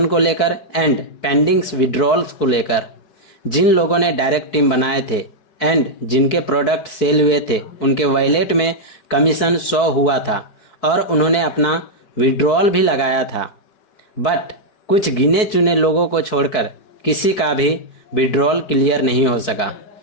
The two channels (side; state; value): right; late; 4.6 ms